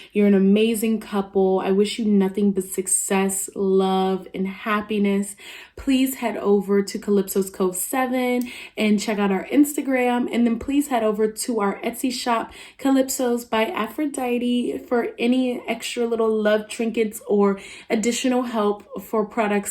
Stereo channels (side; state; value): both; identical; correlation 1.00